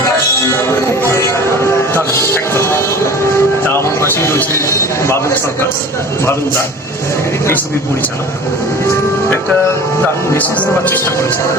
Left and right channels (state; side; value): normal; both; correlation 0.41